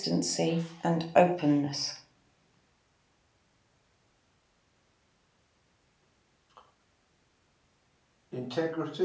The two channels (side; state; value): both; identical; correlation 1.00